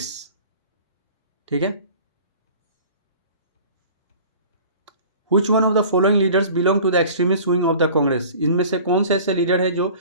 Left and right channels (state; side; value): inverted; both; correlation -0.44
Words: ठीक है, Which one of the following leaders belong to the extremist wing of the Congress? इनमें से कौन से ऐसे लीडर हैं जो